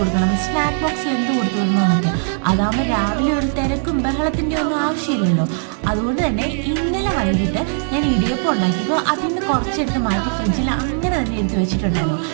സ്നാക്ക് ബോക്സിൽ എന്ത് കൊടുത്തു വിടണമെന്നൊക്കെ. അതാകുമ്പോൾ രാവിലെ ഒരു തിരക്കും ബഹളത്തിൻ്റെ ഒന്നും ആവശ്യമില്ലല്ലോ. അതുകൊണ്ട് തന്നെ ഇന്നലെ വൈകിട്ട് ഞാൻ ഇടിയപ്പം ഉണ്ടാക്കിയപ്പോൾ അതിന് കുറച്ചെടുത്ത് മാറ്റി ഫ്രിഡ്ജിൽ അങ്ങനെ തന്നെ എടുത്ത് വെച്ചിട്ടുണ്ടായിരുന്നു.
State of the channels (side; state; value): left; silent; 65 dB below the other